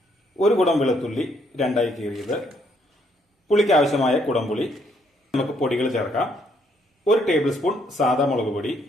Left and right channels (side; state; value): both; normal; correlation 0.70